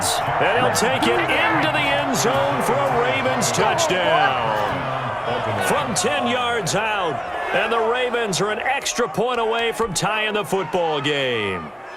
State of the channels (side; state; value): both; identical; correlation 1.00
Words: and he'll take it into the end zone for a Ravens touchdown. From 10 yards out, and the Ravens are an extra point away from tying the football game.